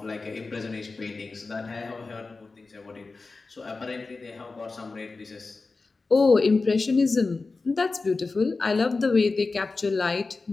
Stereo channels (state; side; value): quieter; right; 3.9 dB